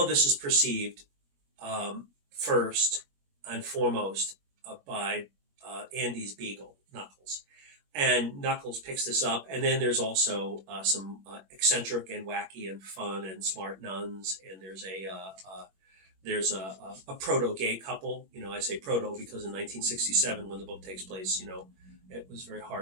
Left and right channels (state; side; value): late; left; 21 ms